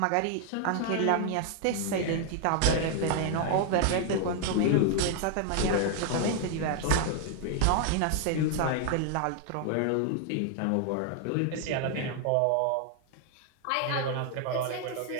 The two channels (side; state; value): both; different; correlation 0.00